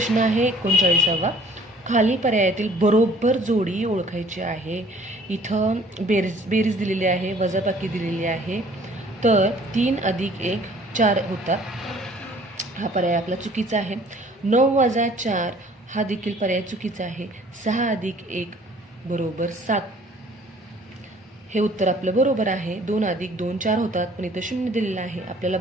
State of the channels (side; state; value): both; normal; correlation 0.54